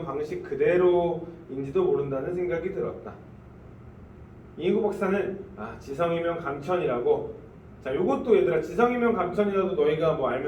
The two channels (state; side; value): identical; both; correlation 1.00